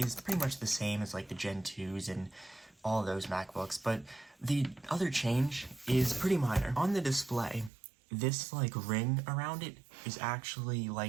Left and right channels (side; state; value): left; drops out; at 7.7 s